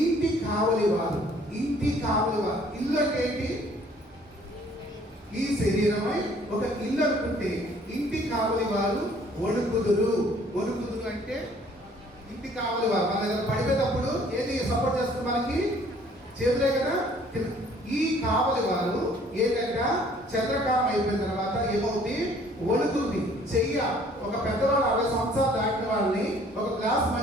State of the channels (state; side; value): normal; both; correlation 0.58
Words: కావలి వారు ఇల్లు అంటే ఏంటి? ఈ శరీరమై ఒక ఇల్లు అనుకుంటే ఇంటి కావలి వారు వణుకుదురు అంటే ఇంటి కావలి వారు. మన దగ్గర పడిపోయేటప్పుడు ఏది సపోర్ట్ చేస్తుంది? మనకి చేతులే కదా. ఈ కావలి వారు ఏంటంటే చంద్రకాలం అయిపోయిన తర్వాత ఏమవుతుంది? వణుకుతుంది. చెయ్య ఒక పెద్దవాళ్ళు 60 సంవత్సరాలు దాటిన వాళ్ళని ఒక గ్లాస్